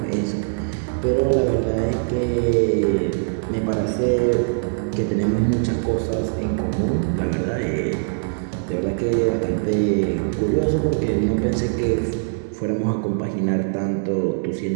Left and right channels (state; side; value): silent; left; 64 dB below the other